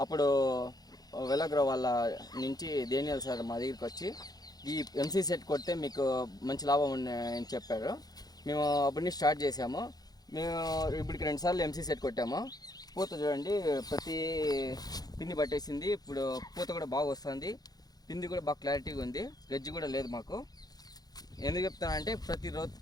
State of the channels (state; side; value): late; right; 0.19 ms